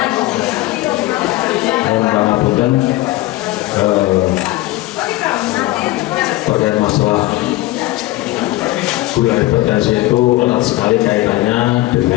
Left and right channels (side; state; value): right; quieter; 17.9 dB